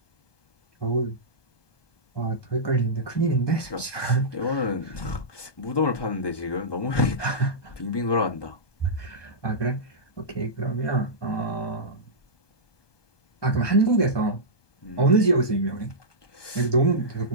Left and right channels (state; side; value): late; right; 1.2 ms